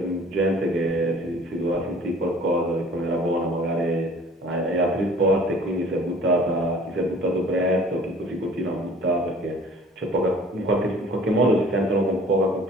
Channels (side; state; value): both; normal; correlation 0.50